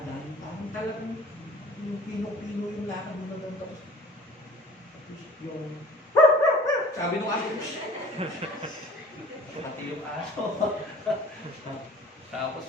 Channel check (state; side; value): normal; both; correlation 0.47